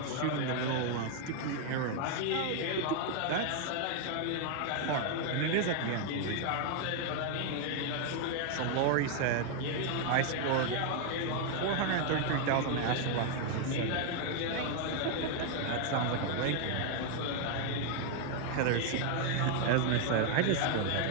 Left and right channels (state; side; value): different; both; correlation 0.00